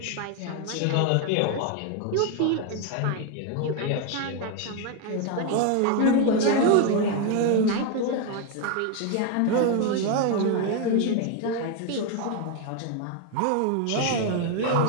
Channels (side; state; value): both; different; correlation 0.01